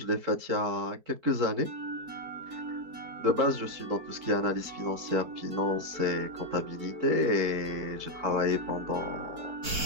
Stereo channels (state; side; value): late; left; 4.5 ms